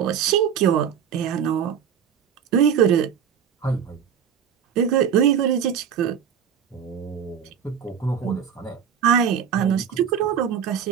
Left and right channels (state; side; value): quieter; left; 8.0 dB